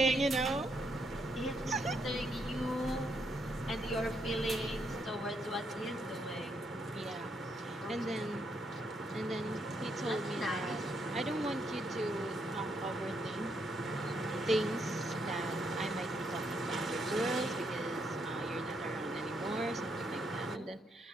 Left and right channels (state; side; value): normal; both; correlation 0.76